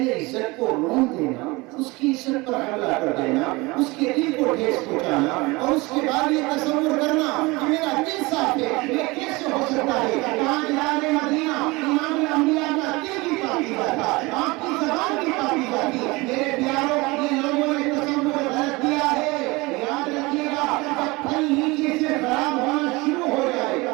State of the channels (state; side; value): quieter; left; 23.6 dB